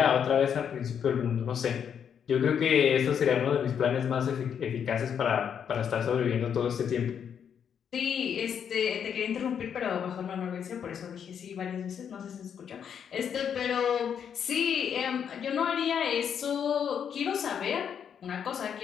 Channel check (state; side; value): quieter; right; 8.0 dB